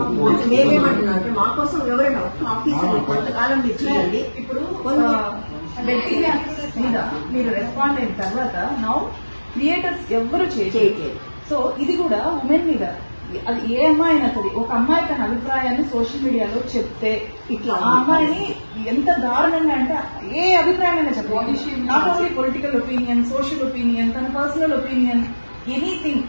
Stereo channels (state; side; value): inverted; both; correlation -1.00